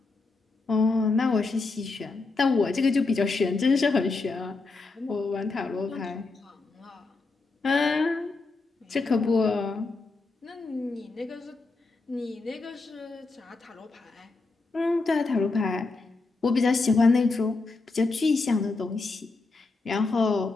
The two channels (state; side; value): quieter; right; 3.7 dB